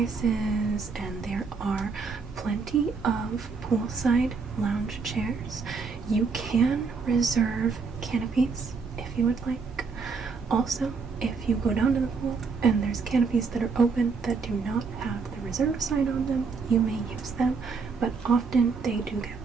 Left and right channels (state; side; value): quieter; left; 4.9 dB